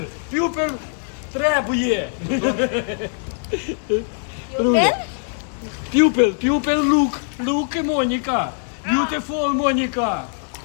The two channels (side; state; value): right; silent; 60 dB below the other